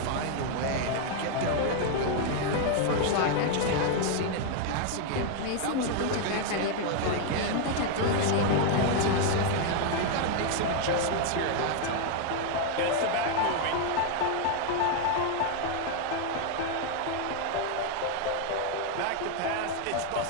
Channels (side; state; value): both; different; correlation 0.00